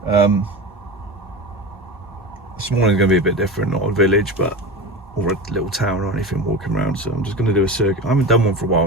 This morning's going to be a bit different, not a village, but or a little town or anything walking around. So I'm just going to do a circuit. I haven't done one for a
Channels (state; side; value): normal; both; correlation 0.27